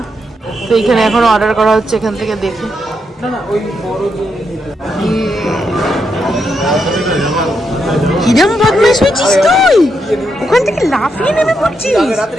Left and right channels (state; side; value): normal; both; correlation 0.81